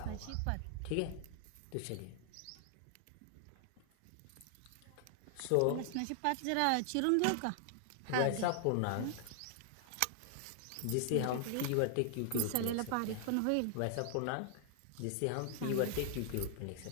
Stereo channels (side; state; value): both; different; correlation 0.00